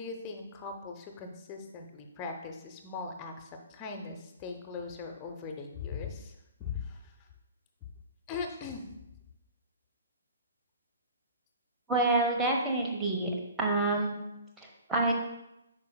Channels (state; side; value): inverted; both; correlation -0.38